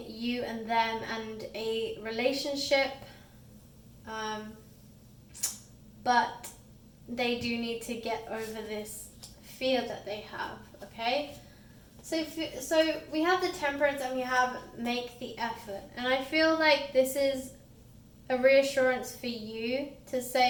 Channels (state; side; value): identical; both; correlation 1.00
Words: you and them and a relationship. But they do need to get over this fear that they have, okay? So we have the Temperance, and we have make the effort. And I feel like this is a reassurance for you to